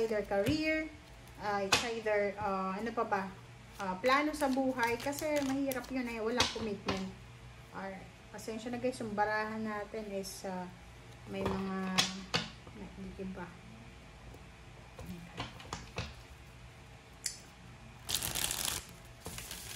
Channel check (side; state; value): both; identical; correlation 1.00